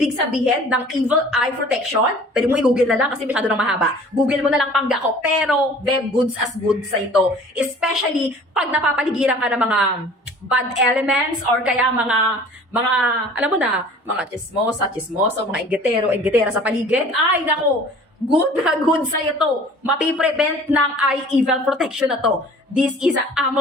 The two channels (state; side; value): normal; both; correlation 0.47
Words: sabihin ng evil eye protection, pwede mo i-google na lang kasi masyado nang mahaba. Google mo na lang pangga ko. Pero, goods as goods sa ito. Especially, pag napapaligiran ka ng mga bad elements or kaya mga alam mo na, mga chismoso, mga ingetera sa paligid. Ay, nako! Good na good sa'yo to. Mapiprevent ng eye evil protection na to. This is an